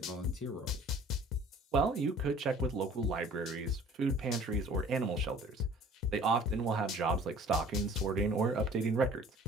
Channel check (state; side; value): normal; both; correlation 0.50